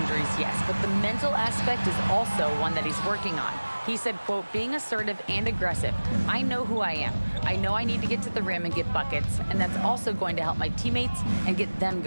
yes, but the mental aspect is also one that he's working on. He said, quote, being assertive and aggressive. I know who I am. I know I need to get to the rim and get buckets, and that's also going to help my teammates and get them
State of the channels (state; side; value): inverted; both; correlation -1.00